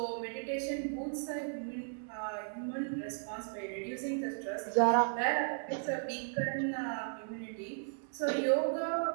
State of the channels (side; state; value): left; silent; digital silence